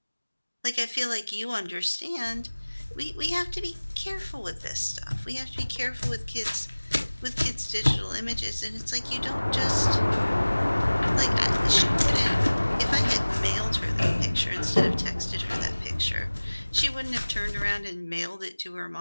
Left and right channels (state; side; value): inverted; both; correlation -1.00